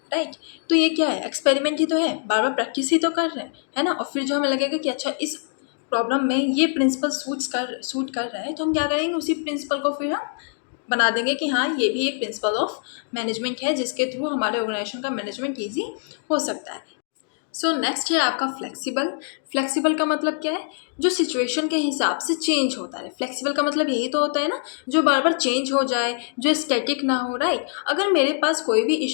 राइट। तो ये क्या है? एक्सपेरिमेंट ही तो है, बार बार प्रैक्टिस ही तो कर रहे हैं, है ना। और फिर जो हमें लगेगा कि अच्छा इस प्रॉब्लम में ये प्रिंसिपल सूट कर रहा है, तो हम क्या करेंगे, उसी प्रिंसिपल को फिर हम बना देंगे कि हाँ ये भी एक प्रिंसिपल ऑफ मैनेजमेंट है जिसके थ्रू हमारे ऑर्गेनाइजेशन का मैनेजमेंट ईजी हो सकता है। सो नेक्स्ट है आपका फ्लेक्सिबल। फ्लेक्सिबल का मतलब क्या है? जो सिचुएशन के हिसाब से चेंज होता है। फ्लेक्सिबल का मतलब यही तो होता है ना, जो बार बार चेंज हो जाए, जो स्टैटिक ना हो, राइट। अगर मेरे पास कोई भी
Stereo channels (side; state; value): right; silent; 63 dB below the other